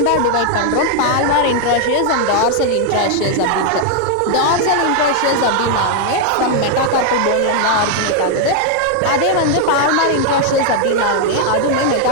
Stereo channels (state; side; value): different; both; correlation 0.00